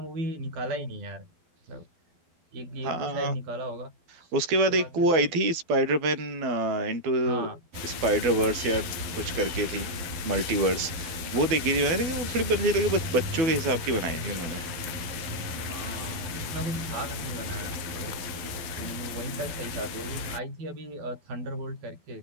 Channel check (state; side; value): late; left; 12 ms